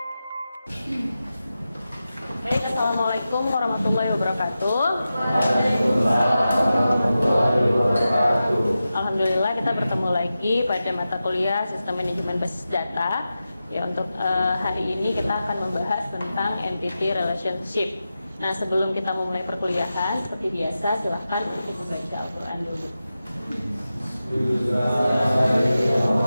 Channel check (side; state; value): both; inverted; correlation -0.92